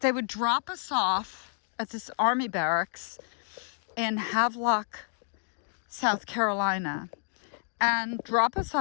would drop us off at this army barracks in Havelock, South Carolina, and drop us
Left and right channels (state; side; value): silent; right; 58 dB below the other